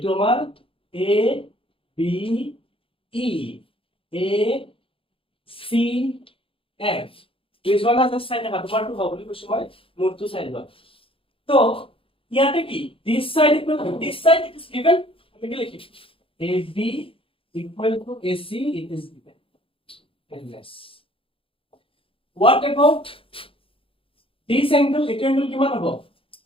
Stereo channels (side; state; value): right; late; 0.26 ms